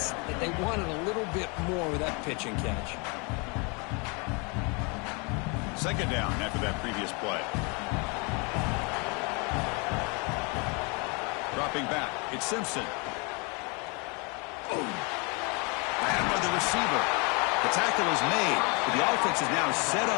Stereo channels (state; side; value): quieter; right; 31.6 dB